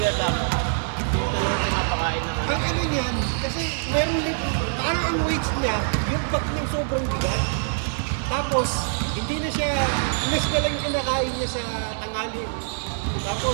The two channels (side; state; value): left; silent; 62 dB below the other